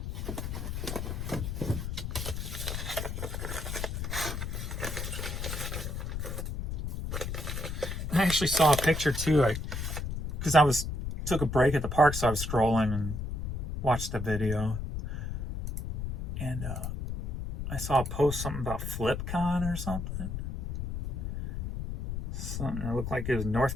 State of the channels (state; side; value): noise; left; rumble, 4 dB below the sound